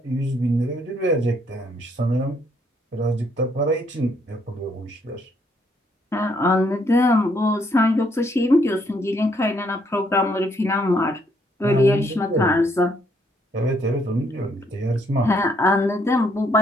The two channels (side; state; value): both; normal; correlation 0.70